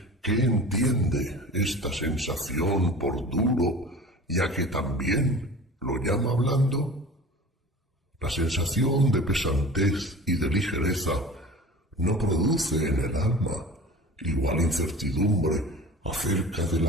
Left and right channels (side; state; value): both; normal; correlation 0.38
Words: qué entiende esta sensación por duro, ya que también lo llama blando? La sensación de pesantez y de ligereza no produce en el alma igual incertidumbre acerca de